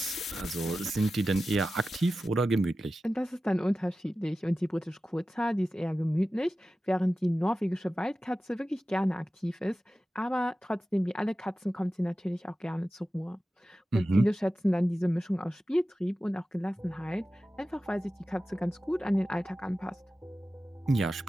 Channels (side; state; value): both; normal; correlation 0.94